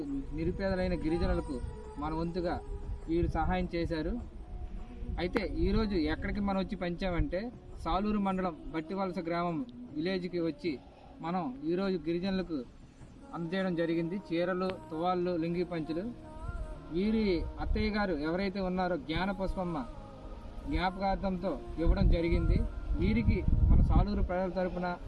నిరుపేదలైన గిరిజనులకు మన వంతుగా వీరు సహాయం చేశారు. అయితే ఈరోజు ఎక్కడికి మనం వచ్చి పంచామంటే సాలూరు మండలం బట్టివలస గ్రామం విలేజ్కి వచ్చి మనం ఈరోజు గిరిజనులకు అందజేయడం జరిగింది. చీరలు, తువాళ్ళు, లుంగీ పంచులు. వీరి అత్తయ్య గారు ఎవరైతే ఉన్నారో జ్ఞాన పుష్పమ్మ జ్ఞాపకార్థంతో ఇవ్వడం జరిగింది. వీరికి మన సాలూరు ప్రజల తరపున,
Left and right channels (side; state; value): both; identical; correlation 1.00